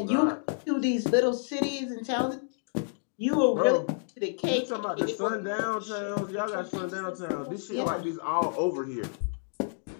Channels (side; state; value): right; silent; digital silence